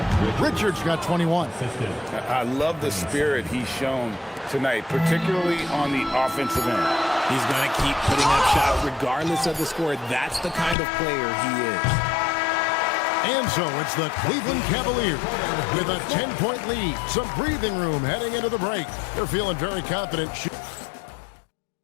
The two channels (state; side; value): drops out; right; at 10.8 s